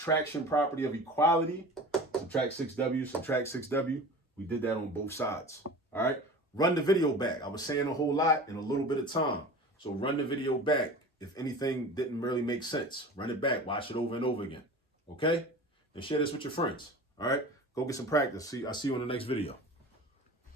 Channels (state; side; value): normal; both; correlation 0.36